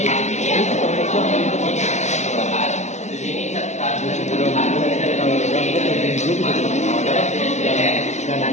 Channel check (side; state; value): right; late; 0.33 ms